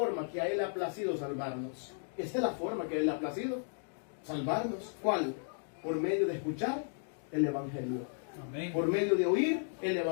que a Él le ha placido salvarnos. Esta es la forma que a Él le ha placido salvarnos. ¿Cuál? Por medio de escuchar el Evangelio. Amén. Por medio de oír el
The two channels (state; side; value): silent; right; digital silence